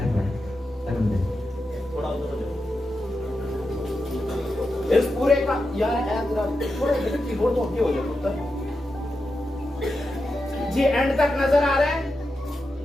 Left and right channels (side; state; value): both; normal; correlation 0.89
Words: इस पूरे का यार थोड़ा कीबोर्ड तो हो जाए जी, एंड तक नजर आ रहा है?